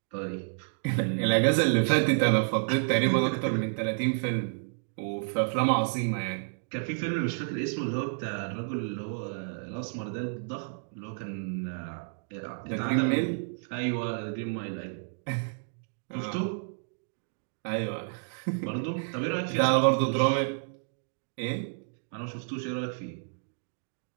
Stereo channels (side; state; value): left; silent; digital silence